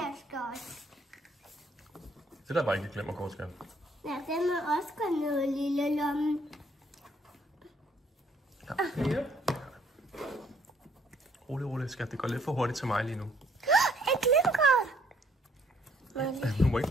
skal også. Det der var ikke et glimmerkort, skal. Ja, den må også gå ned i lille lomme. Ja. Rolig, skat. Det går lidt for hurtigt til mig lige nu. Et glimmerkort. Du må ikke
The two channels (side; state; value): both; normal; correlation 0.64